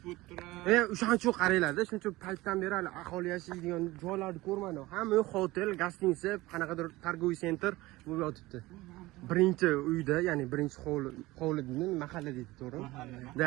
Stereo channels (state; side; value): quieter; left; 19.5 dB